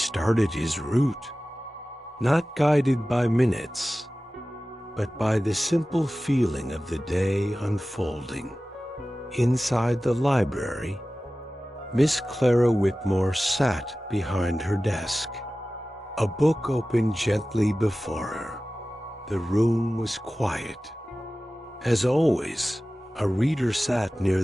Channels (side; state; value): both; normal; correlation 0.96